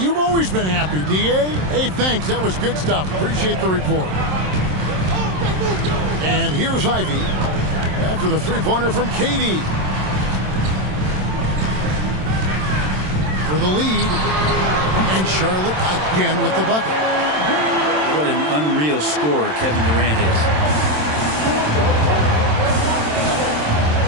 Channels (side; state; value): left; late; 27 ms